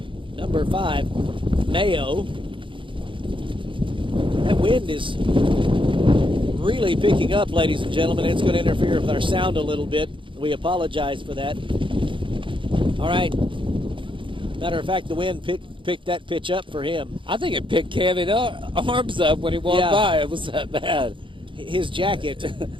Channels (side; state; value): left; late; 0.24 ms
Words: 5, Mayo. That wind is really picking up, ladies and gentlemen. It's going to interfere with our sound a little bit. We apologize for that. All right. Matter of fact, the wind picked that pitch up for him. I think it picked Kevin's arms up when he walked by. It was that bad. His jacket,